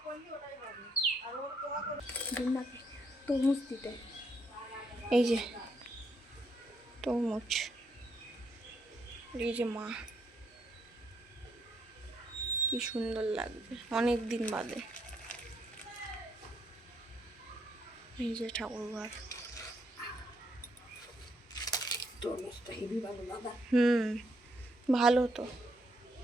তরমুজ দিতে, এই যে তরমুজ, এই যে মা, কি সুন্দর লাগবে অনেক দিন বাদে। এই যে ঠাকুরঘর, ভালো তো।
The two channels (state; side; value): normal; both; correlation 0.74